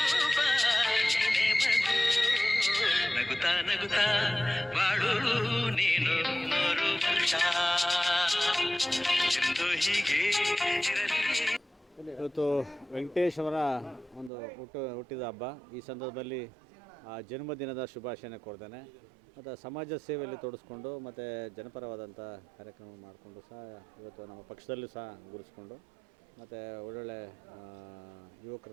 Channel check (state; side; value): drops out; left; at 14.3 s